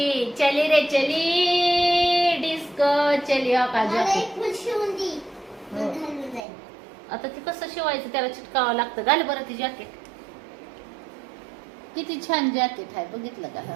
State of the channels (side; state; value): left; drops out; at 6.5 s